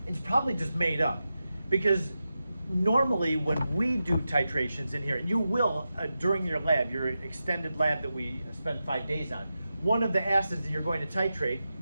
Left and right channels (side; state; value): both; inverted; correlation -0.91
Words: it's probably just made up, because normally when we do titrations in here, you will, during your lab, your extended lab that we spend 5 days on, one of the acids that you're going to titrate